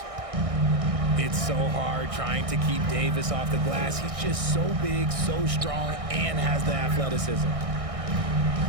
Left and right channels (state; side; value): late; left; 1.6 ms